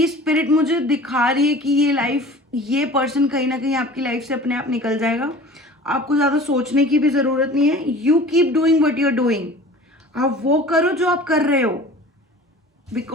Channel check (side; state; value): both; normal; correlation 0.42